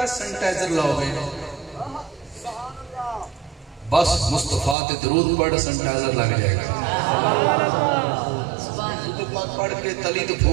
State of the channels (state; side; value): drops out; left; at 4.8 s